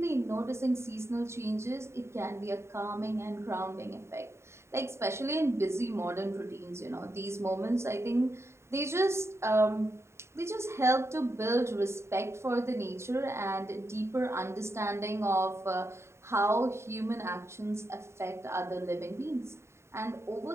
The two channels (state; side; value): late; left; 0.13 ms